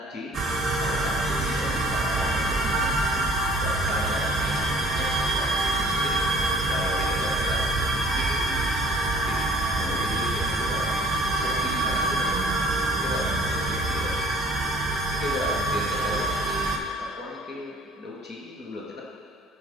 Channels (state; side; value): normal; both; correlation 0.53